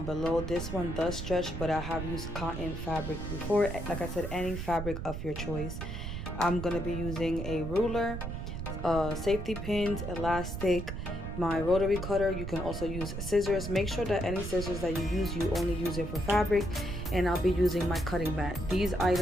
below. This one does stretch, but I have used cotton fabric before. Like I said, any fabric of your choice. I'm going to be using a ruler, safety pins, elastic, my rotary cutter. You can also use scissors. Make sure that any scissors that you use, you only use it for fabric. And I'll be using my cutting mat. These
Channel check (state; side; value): noise; right; rumble, 6 dB below the sound